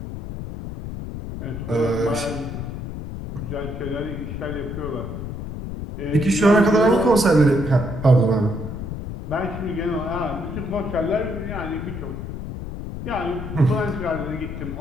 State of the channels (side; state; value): left; noise; rumble, 7 dB below the sound